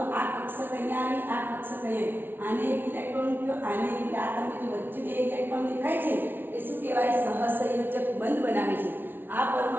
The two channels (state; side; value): late; left; 0.10 ms